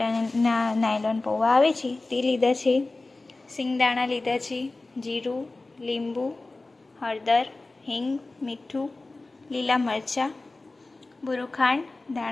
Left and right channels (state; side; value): quieter; right; 3.2 dB